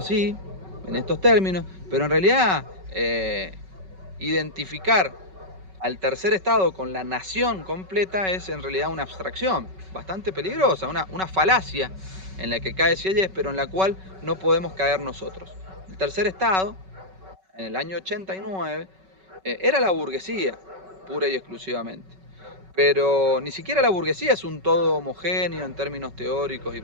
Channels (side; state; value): left; late; 5.3 ms